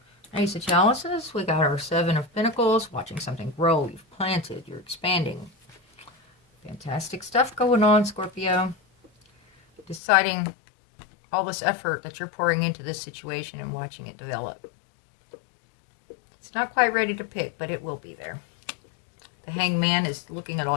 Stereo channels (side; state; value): right; drops out; at 10.0 s